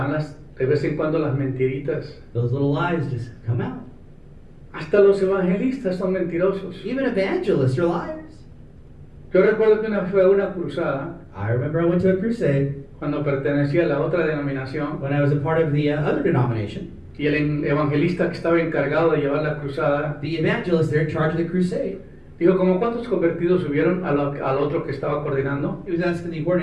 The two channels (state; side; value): identical; both; correlation 1.00